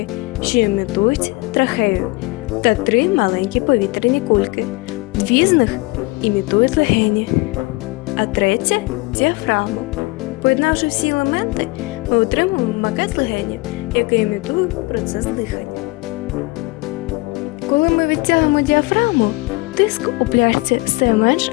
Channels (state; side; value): quieter; right; 24.1 dB